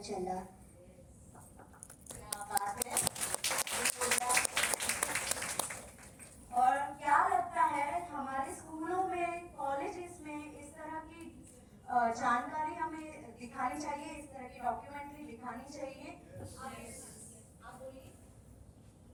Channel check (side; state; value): both; identical; correlation 1.00